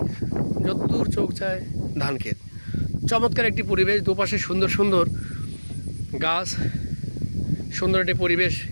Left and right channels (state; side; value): inverted; both; correlation -1.00